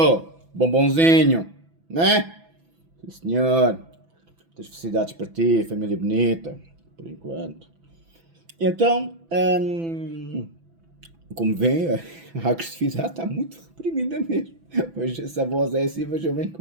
Bombonzinho, né? Sim, senhor. Muitas felicidades para ti, família bonita, por enquanto. Então, como vêem, a agressividade está muito reprimida mesmo. Pois se a voz é assim, vejam bem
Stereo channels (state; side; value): late; left; 6.0 ms